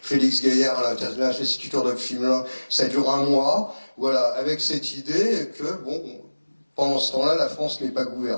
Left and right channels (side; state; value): both; inverted; correlation -1.00